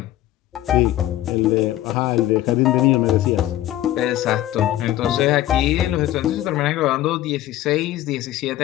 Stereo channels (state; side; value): quieter; right; 14.0 dB